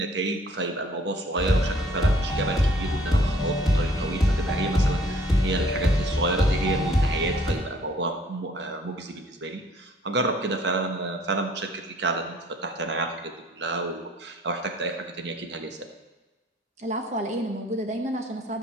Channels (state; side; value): normal; both; correlation 0.58